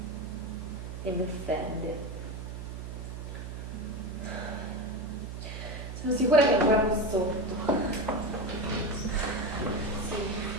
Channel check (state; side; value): noise; right; hum, 7 dB below the sound